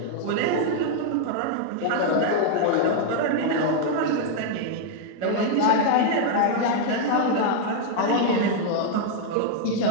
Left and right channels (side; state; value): both; different; correlation 0.00